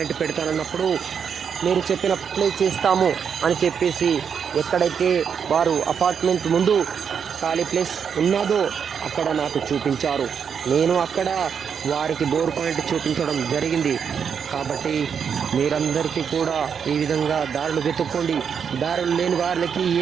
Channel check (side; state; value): left; quieter; 7.1 dB